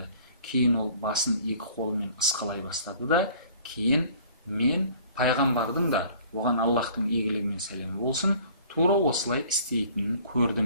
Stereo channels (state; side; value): inverted; both; correlation -0.52